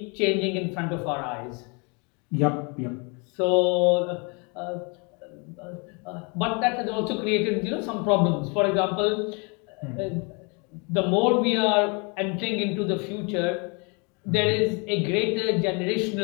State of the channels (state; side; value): quieter; right; 32.7 dB